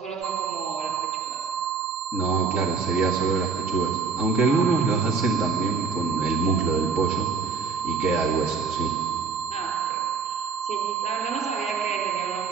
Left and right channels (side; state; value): left; quieter; 5.0 dB